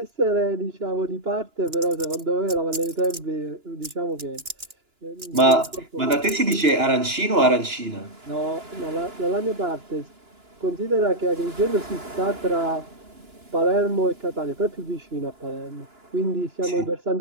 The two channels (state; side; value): late; left; 2.9 ms